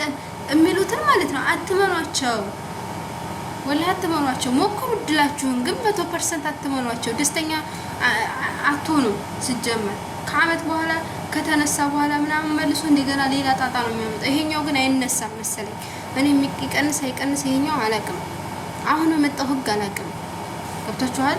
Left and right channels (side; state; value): both; identical; correlation 1.00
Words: የሚሉትን ማለት ነው አትመኗቸው፣ ወላሂ አትመኗቸው። ሞክሩ እድላችሁን፣ ግን 100% አትመኗቸው። ደስተኛ አትሆኑ። ሲጀመር ከአመት በኋላ ከተነሳ በኋላ ምናምን መልሶ እንደገና ሌላ ጣጣ ነው የሚያመጣው። ይሄኛው ግን አይነሳም መሰለኝ። እኔ የሚቀንስ አይቀንስ ይሄኛው አላውቅም። አሁን በመጣው ህግ አላውቅም። ገብታችኋል?